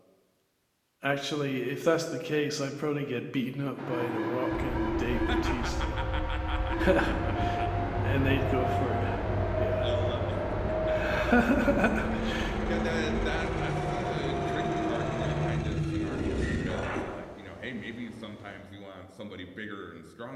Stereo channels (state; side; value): identical; both; correlation 1.00